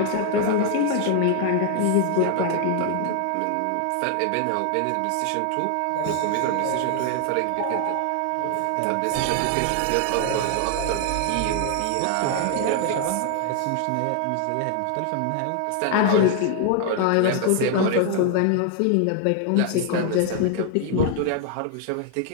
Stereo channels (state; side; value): different; both; correlation 0.00